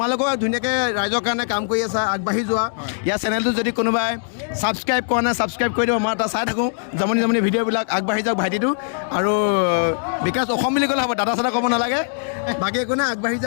ধুনীয়াকৈ ৰাইজৰ কাৰণে কাম কৰি আছা আগবাঢ়ি যোৱা ইয়াৰ চেনেলটো যদি কোনোবাই ছাবস্ক্ৰাইব কৰা নাই ছাবস্ক্ৰাইব কৰি দিব মই এটা চাই থাকোঁ জমনি ভিডিঅ'বিলাক আগবাঢ়ি যাওক ভাইটিটো আৰু বিকাশ অসম বুলি ক'লে হ'ব দাদা চাদা ক'ব নালাগে বাকী একো নাই আগবাঢ়ি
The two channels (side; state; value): right; silent; digital silence